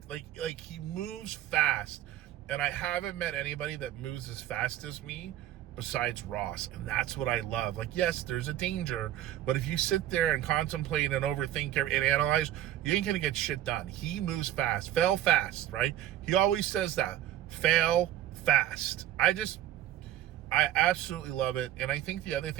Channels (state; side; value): quieter; left; 12.7 dB